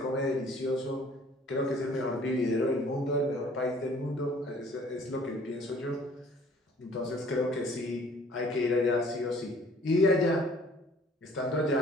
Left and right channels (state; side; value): normal; both; correlation 0.55